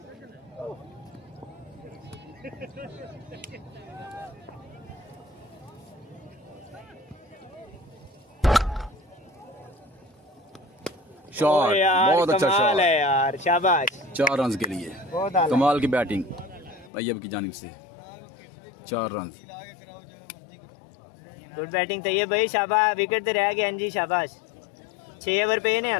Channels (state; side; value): drops out; right; at 16.9 s